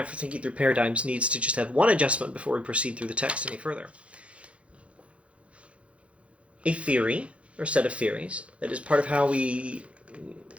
for thinking through paradigms needs to just have one adjustment before we proceed through the text any further. A theory, or set of theories, that is part of how we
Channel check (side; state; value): left; late; 0.062 ms